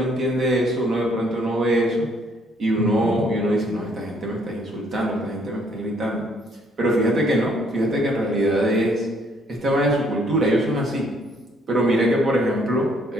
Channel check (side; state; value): both; normal; correlation 0.66